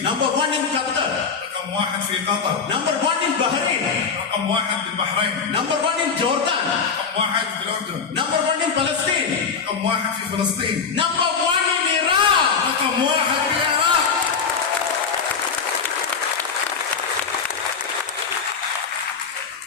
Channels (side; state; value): right; quieter; 5.8 dB